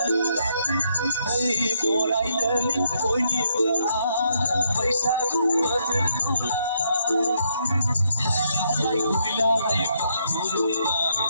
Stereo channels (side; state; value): both; inverted; correlation -0.75